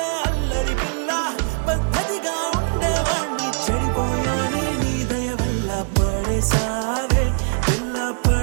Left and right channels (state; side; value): silent; left; 65 dB below the other